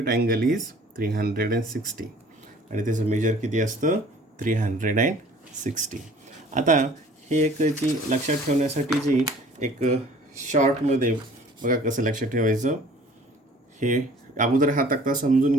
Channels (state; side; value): normal; both; correlation 0.51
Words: angle is 360. आणि त्याचं मेजर किती असतं, 360. आता हे एक जी लक्षात ठेवण्यासाठी जी एक शॉर्टमध्ये बघा कसं लक्षात ठेवायचं, हे अगोदर हा तक्ता समजून